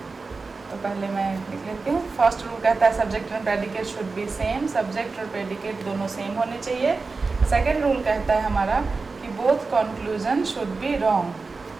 तो पहले मैं लिख लेती हूँ। फर्स्ट रूल कहता है subject and predicate should be same, subject और प्रेडिकेट दोनों सेम होने चाहिए। सेकेंड रूल कहता है हमारा कि both conclusion should be wrong,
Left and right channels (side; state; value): left; quieter; 4.1 dB